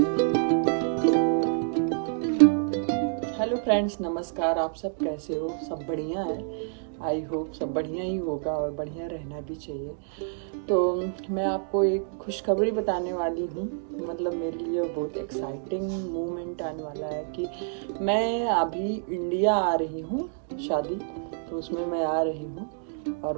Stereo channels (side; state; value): left; silent; digital silence